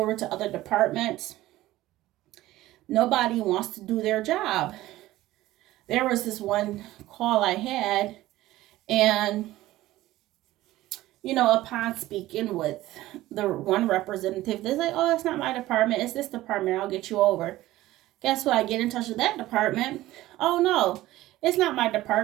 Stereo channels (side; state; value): left; quieter; 16.3 dB